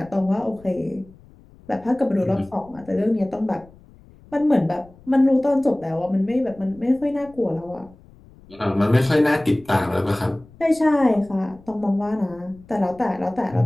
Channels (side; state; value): left; noise; rumble, 24 dB below the sound